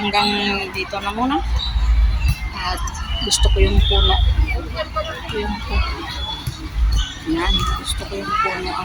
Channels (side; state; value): both; identical; correlation 1.00